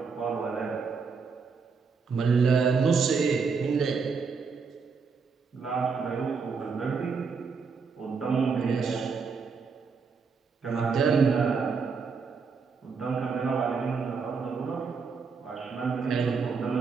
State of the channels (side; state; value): left; quieter; 5.3 dB